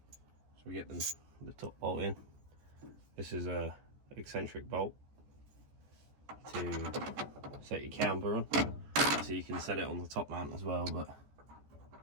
So we get the top bolt in. This is a eccentric bolt to set your camber on. So you can set it on the top mount as well, but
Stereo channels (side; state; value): left; late; 14 ms